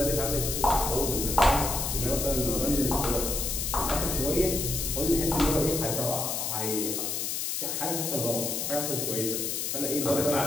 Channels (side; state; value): left; noise; hiss, 1 dB below the sound